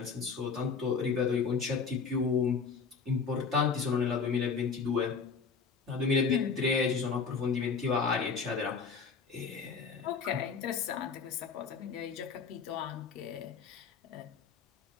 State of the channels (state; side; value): quieter; right; 5.4 dB